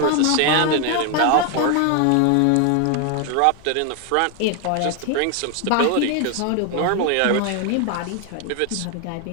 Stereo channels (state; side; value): different; both; correlation 0.01